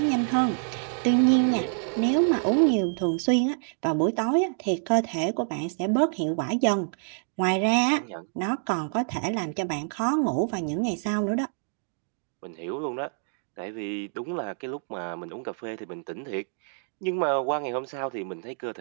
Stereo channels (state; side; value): silent; left; 60 dB below the other